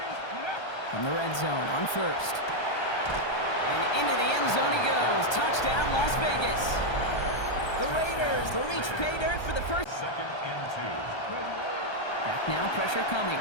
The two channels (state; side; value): late; right; 1.3 ms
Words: From the red zone on 1st. And into the end zone he goes. Touchdown, Las Vegas. The Raiders reach pay dirt for the first. 2nd and 2. Back now, pressure coming.